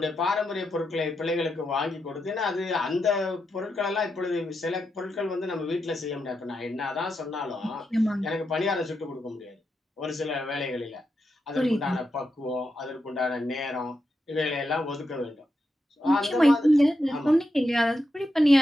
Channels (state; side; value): normal; both; correlation 0.86